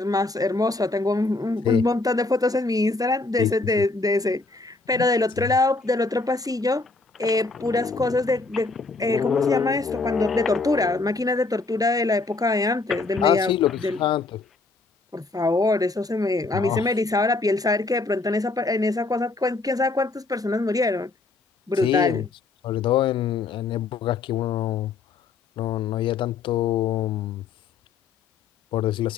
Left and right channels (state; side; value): quieter; right; 3.7 dB